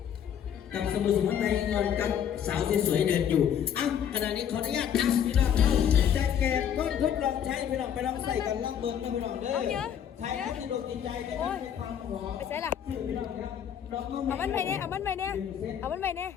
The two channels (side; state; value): right; quieter; 9.0 dB